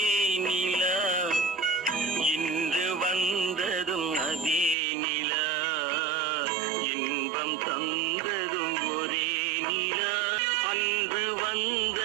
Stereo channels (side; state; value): left; drops out; at 4.8 s